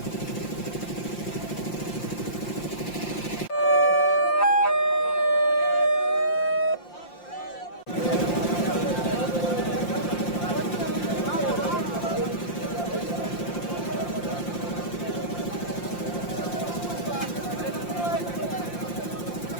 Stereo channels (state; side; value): late; right; 5.7 ms